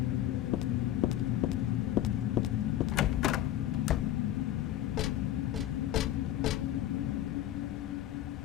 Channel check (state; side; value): quieter; right; 12.9 dB